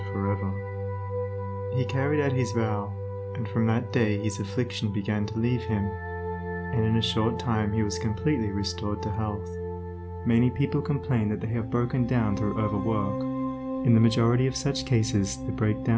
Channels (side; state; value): both; identical; correlation 1.00